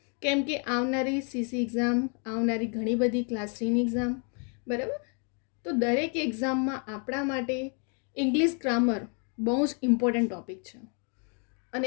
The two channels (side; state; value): right; quieter; 39.1 dB